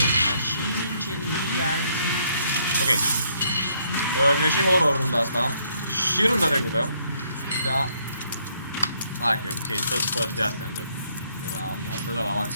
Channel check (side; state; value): both; inverted; correlation -0.70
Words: mașini, incendiază. Ok. Mi-a și horror runda asta. Și runda trecută. Da. Hai că ok, tot părți de astea îndă. Am dat la